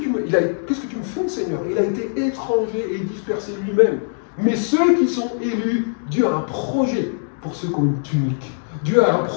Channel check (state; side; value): silent; right; digital silence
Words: me fais, Seigneur? Il a été étranger et dispersé lui-même. Mais ceux qui sont élus, Dieu a un projet pour ceux qui ont une tunique. Dieu a un